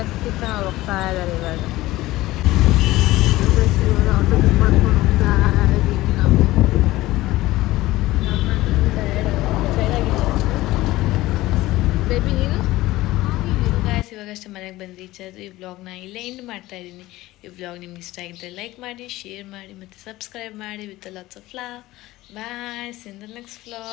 ಹೋಗ್ತಾ ಇದ್ದಾರೆ ಇವಾಗ. ಆಟೋ ಬುಕ್ ಮಾಡ್ಕೊಂಡು ಹೋಗ್ತಾ ಇದ್ದೀವಿ ನಾವು. ಬೇಬಿ ನೀನು ಗಾಯ್ಸ್ ಇವಾಗಷ್ಟೇ ಮನೆಗೆ ಬಂದು ರೀಚ್ ಆದರೂ ಈ ವ್ಲಾಗ್ನ ಇಲ್ಲೇ ಎಂಡ್ ಮಾಡ್ತಾ ಇದ್ದೀನಿ. ಈ ವ್ಲಾಗ್ ನಿಮ್ಗೆ ಇಷ್ಟ ಆಗಿದ್ದರೆ ಲೈಕ್ ಮಾಡಿ, ಶೇರ್ ಮಾಡಿ ಮತ್ತು ಸಬ್ಸ್ಕ್ರೈಬ್ ಮಾಡಿ with lots of love. Bye, see in the next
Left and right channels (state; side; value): quieter; right; 17.6 dB